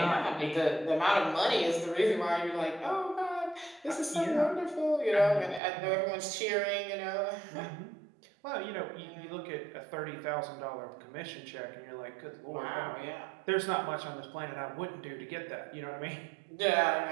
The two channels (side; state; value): left; drops out; at 5.6 s